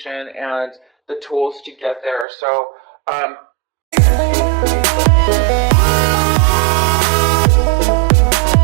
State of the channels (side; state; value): left; drops out; at 2.2 s